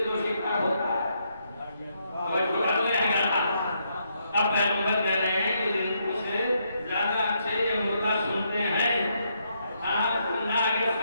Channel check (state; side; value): inverted; both; correlation -0.77